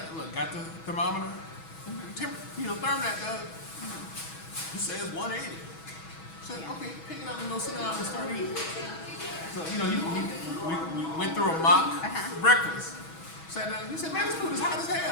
look, got the thermometer. Therm that, Doug. It says 180. I said, okay, pick it up and go sit down and start eating. So, we went through a mock breakfast. Sat down, he said, man, this food is hot as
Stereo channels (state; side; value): late; right; 6.2 ms